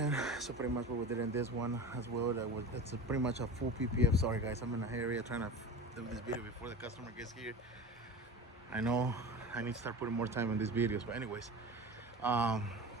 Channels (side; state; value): both; normal; correlation 0.32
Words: So pretty much what we did in this one as well, it's pretty much a full PPF. Sorry guys, I'm in a area trying to do this video before the customer gets here. I know I need to start putting more time in these videos, but anyways,